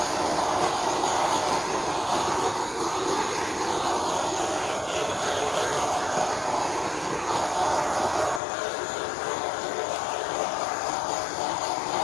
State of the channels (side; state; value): right; drops out; at 8.4 s